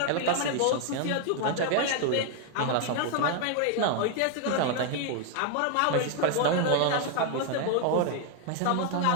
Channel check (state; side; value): different; both; correlation 0.00